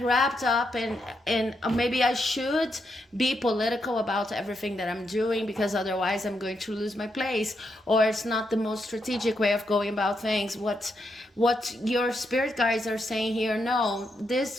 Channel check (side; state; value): both; normal; correlation 0.81